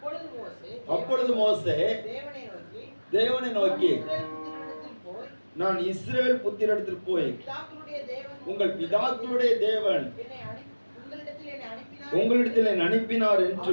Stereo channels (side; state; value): both; inverted; correlation -1.00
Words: அப்பொழுது மோசே தேவனை நோக்கி, நான் இஸ்ரவேல் புத்திரரிடத்தில் போய் உங்கள் பிதாக்களுடைய தேவன் உங்களிடத்தில் என்னை அனுப்பினார்